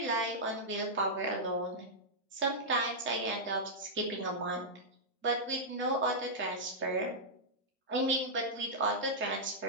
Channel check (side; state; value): both; normal; correlation -0.09